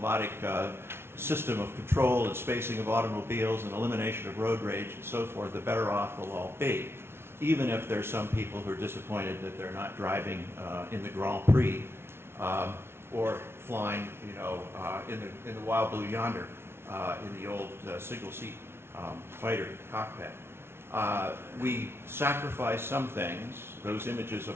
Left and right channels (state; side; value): late; left; 0.12 ms